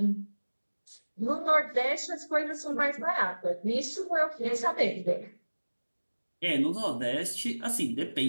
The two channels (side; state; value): both; inverted; correlation -1.00